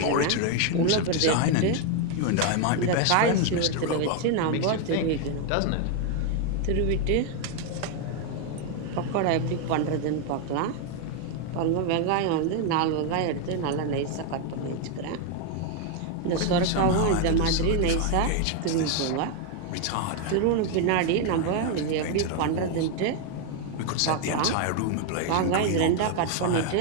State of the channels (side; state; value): both; different; correlation 0.01